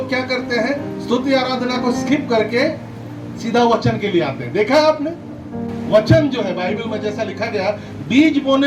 क्या करते हैं, स्तुति आराधना को स्किप करके सीधा वचन के लिए आते हैं। देखा है आपने? वचन जो है बाइबल में जैसा लिखा गया, बीज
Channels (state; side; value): identical; both; correlation 1.00